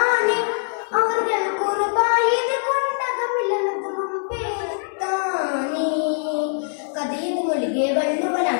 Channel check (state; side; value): silent; right; digital silence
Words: അവர்கள் കുർബായത് കൊണ്ടകമിലമതും പേരുത്താനെ കഥയത് മൊഴികെ